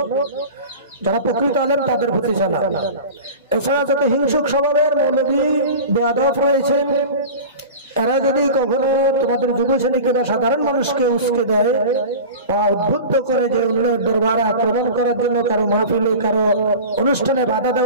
যারা প্রকৃত আলেম তাদের প্রতি জানা। এছাড়া যত হিংসুক স্বভাবের মৌলভী বেয়াদব রয়েছে, এরা যদি কখনো তোমাদের যুব শ্রেণীকে বা সাধারণ মানুষকে উস্কে দেয় বা উদ্বুদ্ধ করে যে অন্যের দরবারে আক্রমণ করার জন্য, কারো মাহফিলে, কারো অনুষ্ঠানে বাধা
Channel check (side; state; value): both; inverted; correlation -0.34